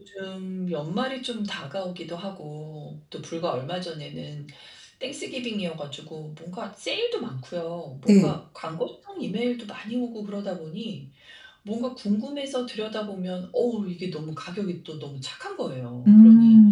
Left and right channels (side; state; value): both; identical; correlation 1.00